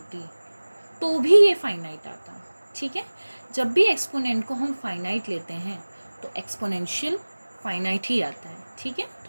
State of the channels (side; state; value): both; inverted; correlation -1.00